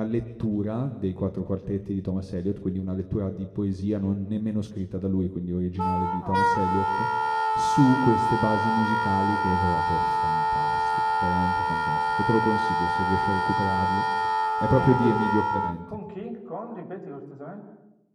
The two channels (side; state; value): both; identical; correlation 1.00